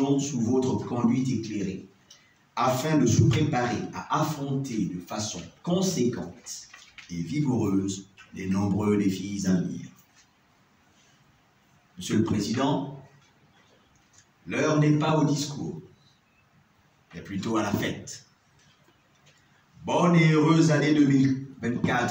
sous votre conduite éclairée, afin de se préparer à affronter de façon conséquente et vigoureuse les nombreux défis à venir. Monsieur le Président, l'heure n'est pas au discours, mais plutôt à la fête. Bonne et heureuse année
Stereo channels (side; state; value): both; identical; correlation 1.00